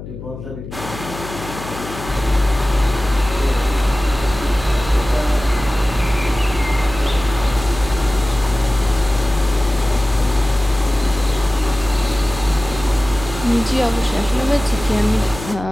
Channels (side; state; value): left; noise; hum, 12 dB below the sound